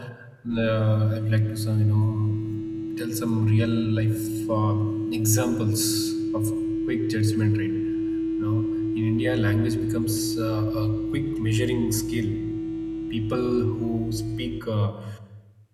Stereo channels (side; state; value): both; identical; correlation 1.00